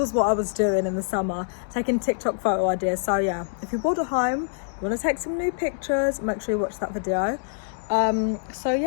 what I was doing in the summer, taking TikTok photo ideas. So yeah, if you're bored at home, you want to take some new pictures, make sure you watch that video. So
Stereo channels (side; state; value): right; silent; digital silence